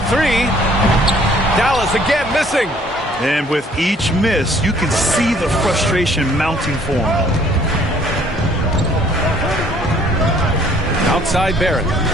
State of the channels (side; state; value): both; normal; correlation 0.59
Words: 3. Dallas again missing. And with each miss, you can see the frustration mounting for him. Outside Barrett.